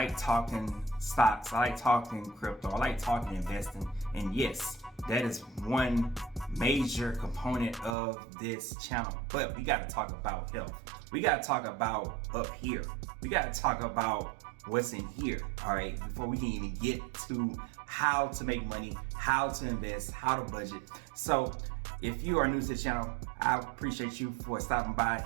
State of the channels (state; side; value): drops out; left; at 8.0 s